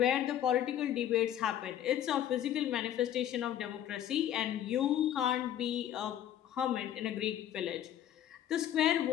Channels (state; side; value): quieter; right; 11.0 dB